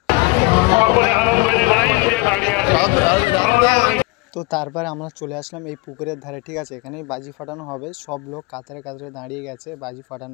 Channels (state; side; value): quieter; right; 25.4 dB